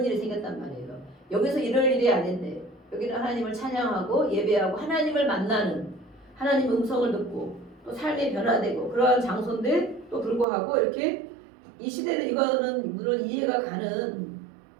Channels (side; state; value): left; drops out; at 10.5 s